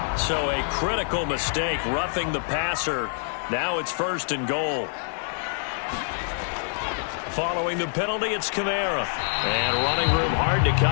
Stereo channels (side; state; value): right; silent; digital silence